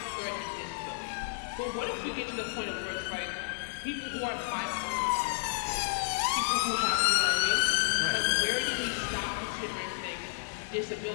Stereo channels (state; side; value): silent; right; digital silence